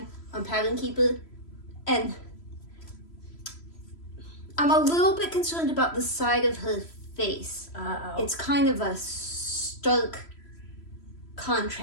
on Pattern Keeper, and I'm a little bit concerned about the side of her face. Uh-oh. It's kind of a stark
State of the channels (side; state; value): right; late; 3.0 ms